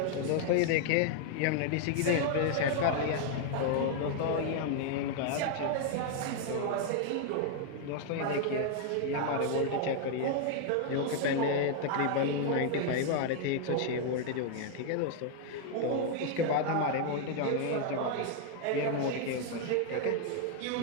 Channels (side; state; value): both; different; correlation 0.00